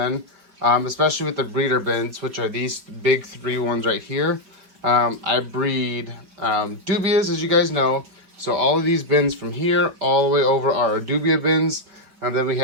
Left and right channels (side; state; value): left; late; 4.8 ms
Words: especially with the breeder bins, which are these big 3 ones right here. I breed Dubias, as you guys know. So all of these bins from here all the way over are our Dubia bins. And then we